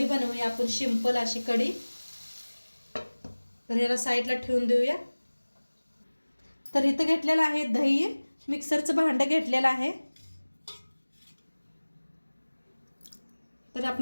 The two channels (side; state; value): both; inverted; correlation -1.00